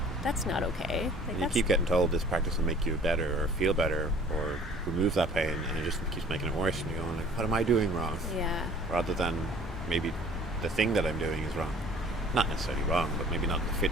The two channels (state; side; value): normal; both; correlation 0.51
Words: that's not okay. Like, you keep getting told this practice will make you better or feel better or remove that pain, and it just keeps making it worse, and you're going like, what am I doing wrong? Yeah. Rather than maybe the thing that I'm doing is wrong. Not necessarily wrong, but maybe not fit